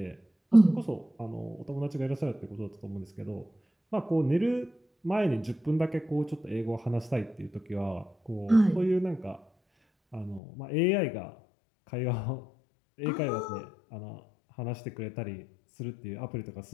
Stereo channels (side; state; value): right; drops out; at 10.4 s